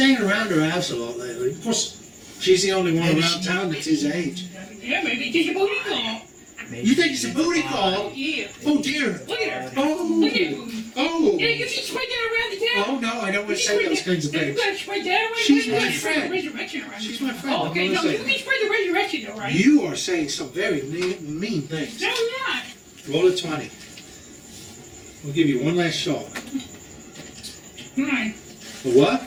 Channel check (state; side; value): identical; both; correlation 1.00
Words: around her house a lot lately. Of course, she's the only one Maybe around she- town that's his age. Yeah, maybe it's a booty call. You think it's a booty call? Yeah. Oh dear. Look at her. Oh. Look at her. Oh. Yeah, you should spread that around the town. Oh no, I don't want to say those kinds of You things. gotta spread that around. She's you my gotta spread the friend. resurrection around. She's my friend. Oh, I'm okay, gonna no, say you can spread the resurrection though, right? You are saying some very mean things. No, I'm not. Roll a 20. We'll give you one last shot. 9. A what?